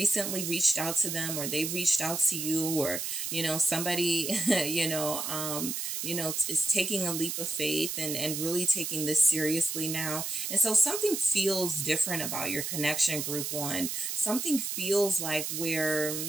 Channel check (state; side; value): noise; right; hiss, 3 dB below the sound